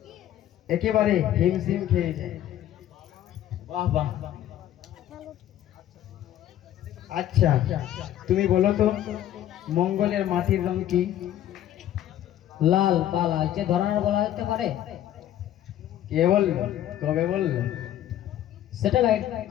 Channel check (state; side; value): quieter; right; 11.9 dB